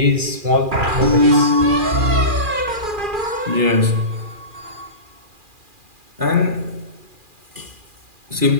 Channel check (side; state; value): left; late; 2.4 ms